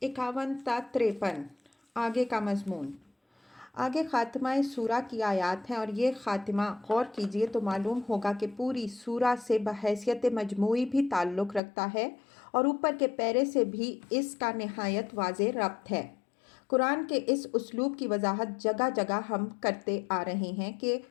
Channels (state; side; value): drops out; right; at 11.6 s